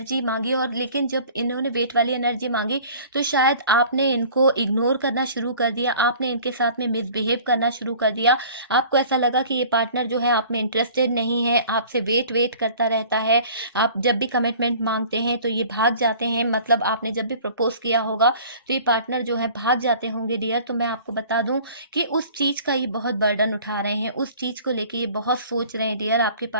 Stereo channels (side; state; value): both; inverted; correlation -0.47